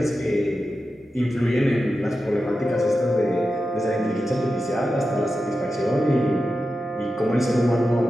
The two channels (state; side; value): normal; both; correlation 0.91